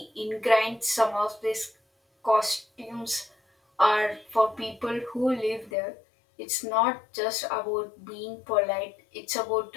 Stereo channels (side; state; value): right; drops out; at 5.7 s